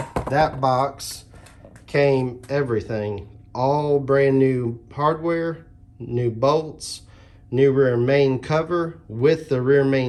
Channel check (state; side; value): identical; both; correlation 1.00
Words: that box came everything, all brand new hardware, new bolts, new rear main cover with the rear